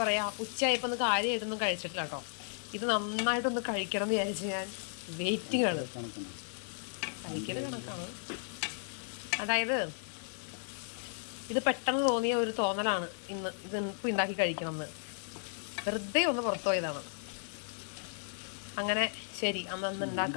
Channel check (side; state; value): right; silent; digital silence